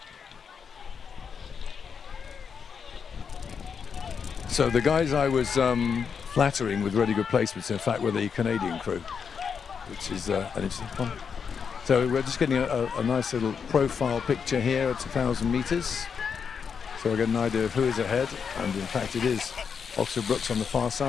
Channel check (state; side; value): quieter; right; 6.5 dB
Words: So the guys I was flattering with really good placements, in fact, were the Canadian crew, which is an interesting one. So we're just getting a nice little profile picture here at 1,000 meters. So I get an idea of who is ahead, and in fact it is Oxford Brookes on the far